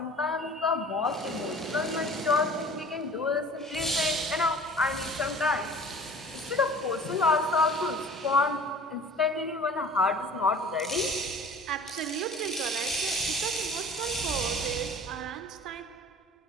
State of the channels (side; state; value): both; normal; correlation 0.45